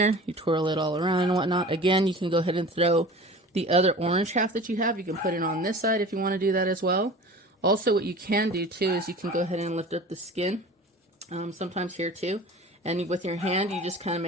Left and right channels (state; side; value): normal; both; correlation 0.39